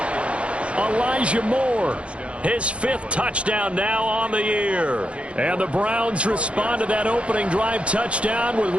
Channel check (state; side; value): late; left; 0.061 ms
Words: Elijah Moore, his 5th touchdown now on the year. And the Browns respond to that opening drive touchdown with